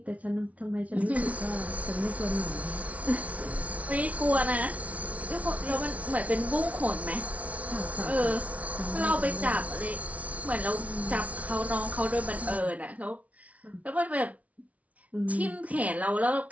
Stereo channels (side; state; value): left; late; 0.068 ms